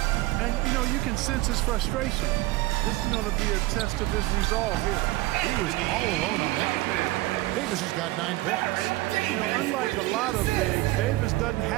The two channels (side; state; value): left; quieter; 18.7 dB